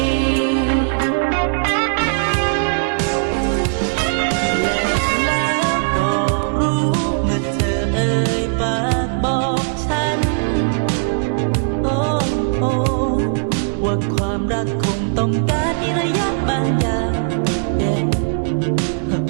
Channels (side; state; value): left; silent; digital silence